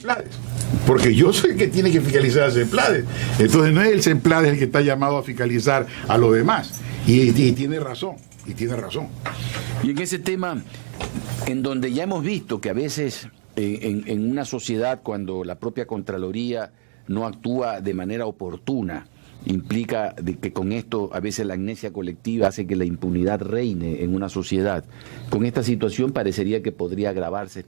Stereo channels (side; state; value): left; silent; digital silence